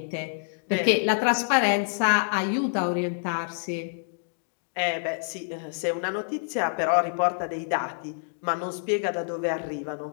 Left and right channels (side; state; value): right; silent; digital silence